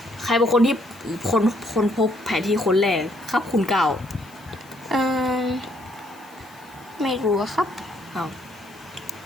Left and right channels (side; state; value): left; noise; hiss, 26 dB below the sound